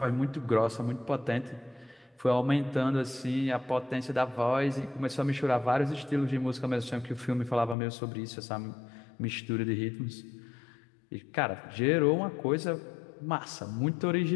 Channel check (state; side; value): drops out; right; at 7.8 s